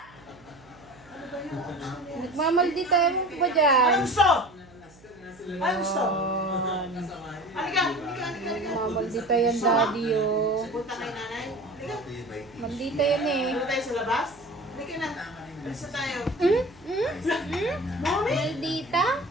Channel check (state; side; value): noise; right; hum, 26 dB below the sound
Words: Nagmamaldita mo ba dyan? Ano gusto? Ano gusto? Halika! Nagmamaldita yan, daddy, oh. Punta kay nanay. Halika. Maldita yan eh. Punta tayo sa labas. Halika na. Alis na tayo. Mommy! Maldita?